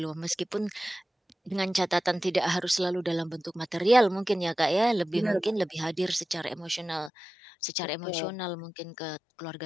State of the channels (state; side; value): drops out; right; at 7.1 s